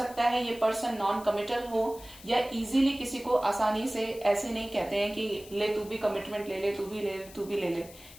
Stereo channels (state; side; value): noise; left; hiss, 19 dB below the sound